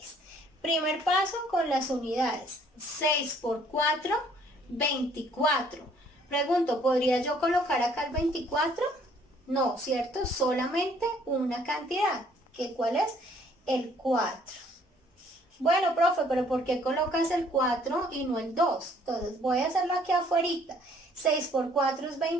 Primer paso con las unidades. 6 por 4, 24. Pregunto, ¿podría yo colocar acá el 24? No, ¿cierto? Solamente una cantidad. ¿Qué cuál es? El 4. Bueno, profe, pero ¿por qué colocas el 4 y no el 2? Entonces voy a hacerlo aquí afuera. 6 por 4 es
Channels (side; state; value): both; normal; correlation 0.61